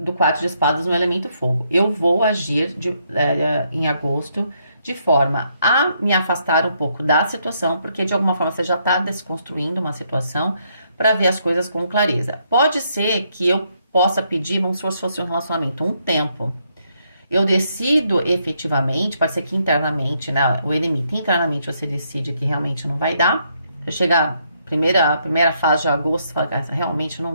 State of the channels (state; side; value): inverted; both; correlation -0.74